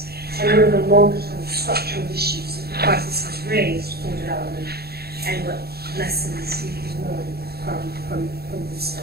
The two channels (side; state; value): left; late; 0.46 ms